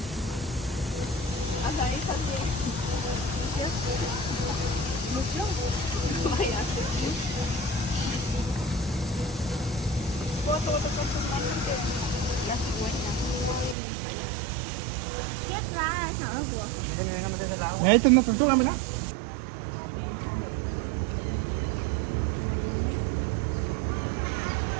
Hasta ahí está bien. ¿Mucho? Vaya, ¿puedo tocar tus manos que la cigüeña? ¿Qué traes, algo? Ahí está una tortuga, mira.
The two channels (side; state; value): left; drops out; at 13.8 s